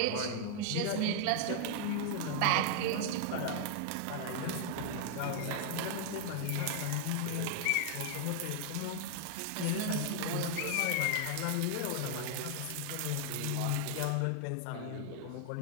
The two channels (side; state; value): both; different; correlation 0.00